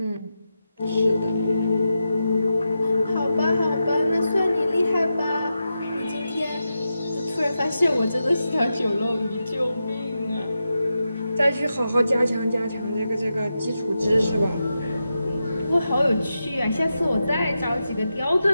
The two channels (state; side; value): inverted; both; correlation -0.89